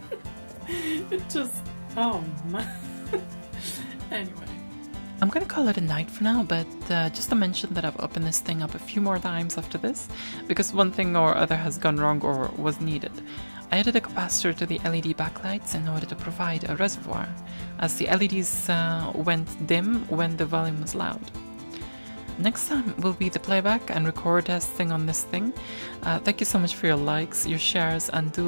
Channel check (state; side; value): inverted; both; correlation -1.00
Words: It just, oh man. Anyway. I'm gonna call it a night for now, but just to mention that I've opened this thing up a few more times after this, because one thing or other has gone wrong or was needed. I added a capacitor to the LED backlights in order to provide a reservoir, as the LEDs went dim when the volume was loud. Next time will be the playback and record testing on this thing. Thank you so much for your likes, your shares, and do